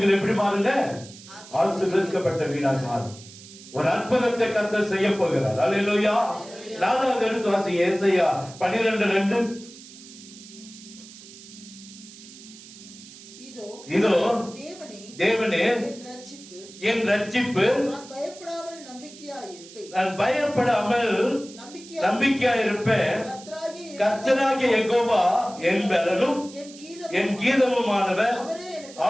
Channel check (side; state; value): right; noise; hiss, 18 dB below the sound